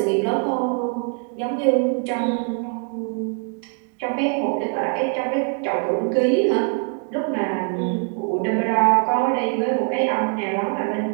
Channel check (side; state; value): left; quieter; 37.2 dB